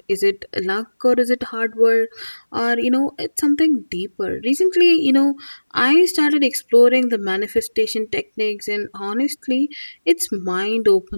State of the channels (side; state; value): both; inverted; correlation -1.00